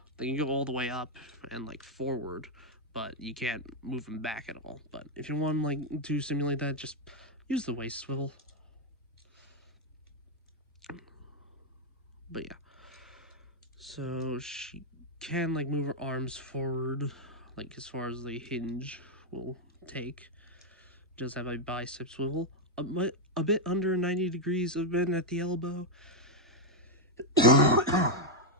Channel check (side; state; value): both; normal; correlation -0.01